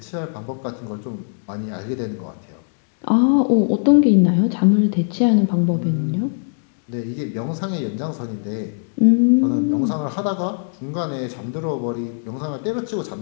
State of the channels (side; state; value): right; silent; digital silence